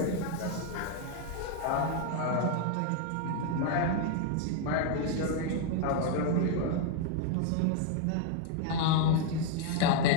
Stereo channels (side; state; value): both; different; correlation 0.00